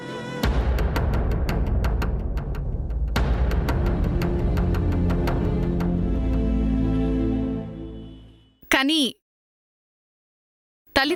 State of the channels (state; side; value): identical; both; correlation 1.00